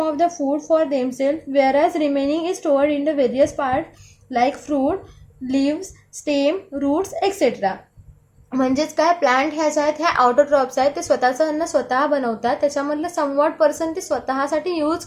of the food for themself, whereas remaining is stored in the various parts like fruit, leaves, stem, roots, etc. म्हणजेच काय, प्लांट ह्या ज्या आहेत ह्या ऑटोट्रॉप्स आहेत, ते स्वतःचं अन्न स्वतः बनवतात. त्याच्यामधलं समवॉट पर्सन ते स्वतःसाठी यूज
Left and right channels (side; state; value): both; identical; correlation 1.00